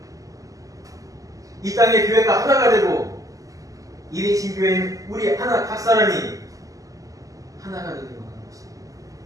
이 땅의 교회가 하나가 되고 이리신 교회는 우리 하나 각 사람이 하나가 되기를 원하는 것입니다.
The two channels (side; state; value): left; late; 0.17 ms